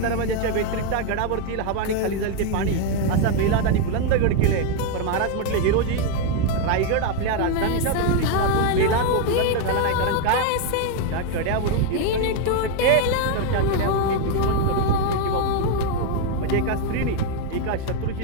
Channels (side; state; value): both; different; correlation 0.01